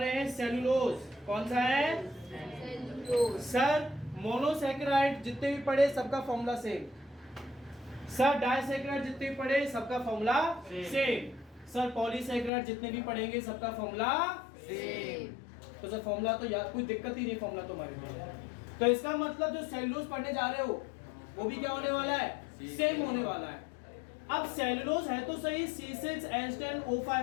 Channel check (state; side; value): drops out; right; at 12.5 s